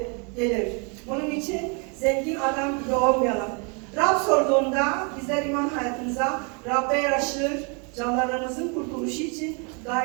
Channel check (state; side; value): quieter; left; 35.0 dB